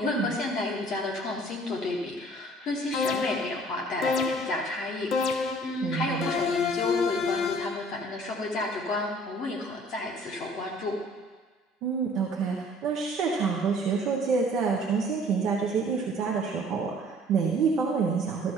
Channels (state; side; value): normal; both; correlation 0.53